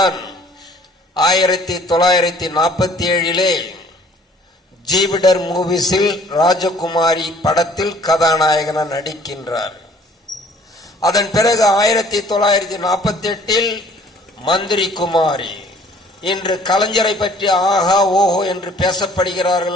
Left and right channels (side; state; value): both; normal; correlation 0.55